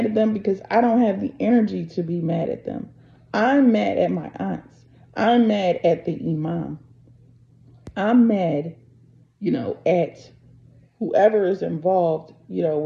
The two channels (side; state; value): both; identical; correlation 1.00